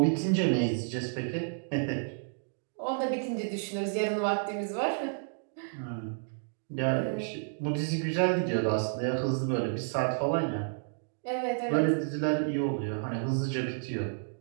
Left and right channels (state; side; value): silent; left; digital silence